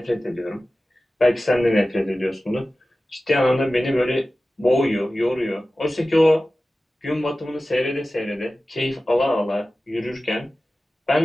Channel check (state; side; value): normal; both; correlation 0.96